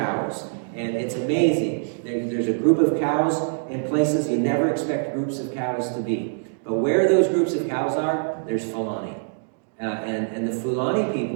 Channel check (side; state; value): left; silent; digital silence